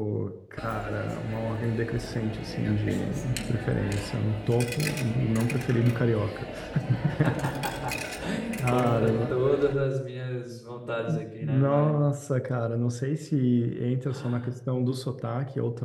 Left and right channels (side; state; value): both; identical; correlation 1.00